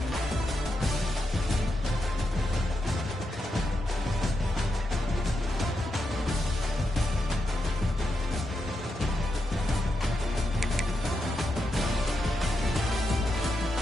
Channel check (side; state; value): both; normal; correlation 0.85